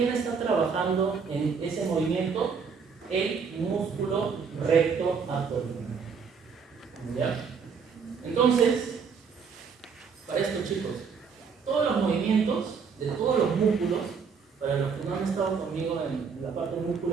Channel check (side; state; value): left; quieter; 5.9 dB